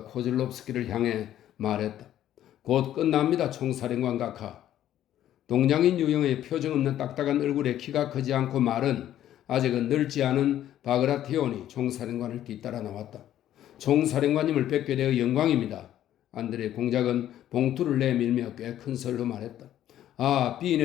코즐롭스키를 향해 말했다. 곧 끝납니다, 총사령관 각하. 동양인 유형의 표정 없는 딱딱한 얼굴에 키가 크지 않고 말은 아직은 늙지 않은 바그라티온이 총사령관을 뒤따라 나왔다. 총사령관님을 뵙게 되어 영광입니다. 안드레 공작은 봉투를 내밀며 꽤 큰 소리로 말했다. 아,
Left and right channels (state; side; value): quieter; right; 11.9 dB